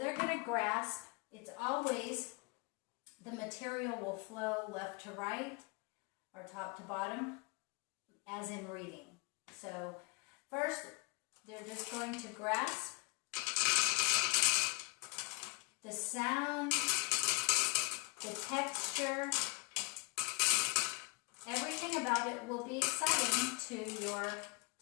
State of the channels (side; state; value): right; quieter; 29.7 dB